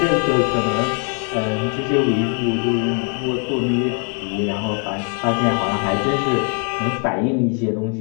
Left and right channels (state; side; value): quieter; right; 38.3 dB